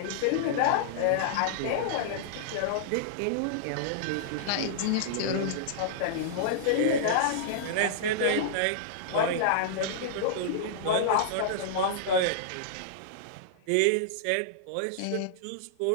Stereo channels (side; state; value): both; different; correlation -0.02